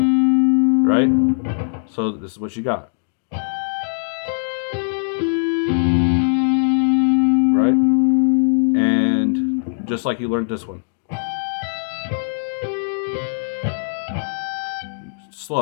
Right? So this is what you got. Right? And just like you learned this one.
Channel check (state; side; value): silent; right; digital silence